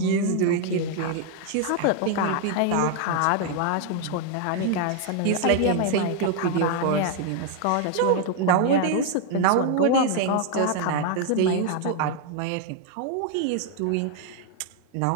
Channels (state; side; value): different; both; correlation 0.00